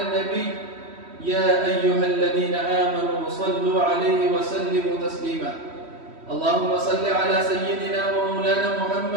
النبي يا أيها الذين آمنوا صلوا عليه وسلموا تسليما. اللهم صل على سيدنا ومولانا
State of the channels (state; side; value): late; left; 3.1 ms